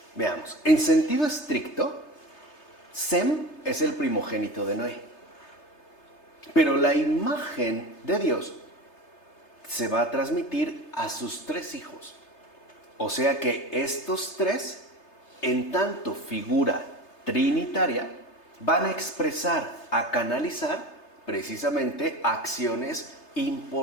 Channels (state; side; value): late; right; 3.3 ms